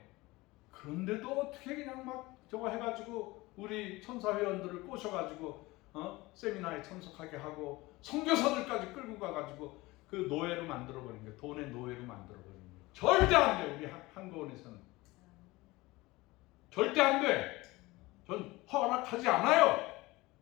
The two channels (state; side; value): quieter; right; 21.0 dB